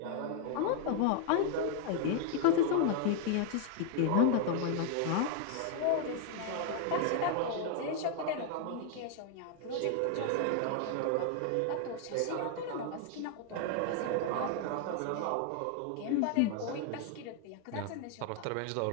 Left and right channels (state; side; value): different; both; correlation 0.00